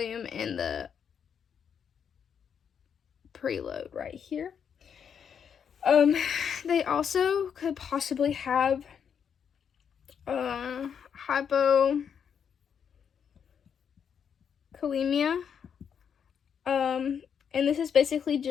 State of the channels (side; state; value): right; quieter; 7.5 dB